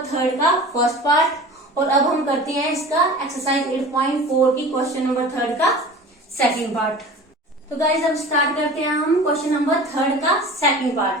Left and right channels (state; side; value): normal; both; correlation 0.38